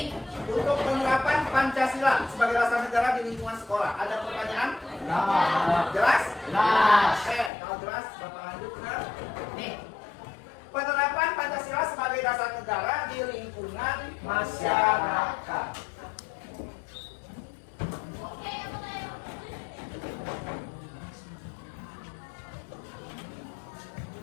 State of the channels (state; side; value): drops out; right; at 7.5 s